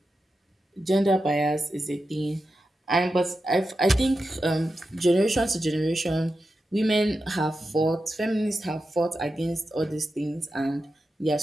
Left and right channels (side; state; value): both; normal; correlation 0.90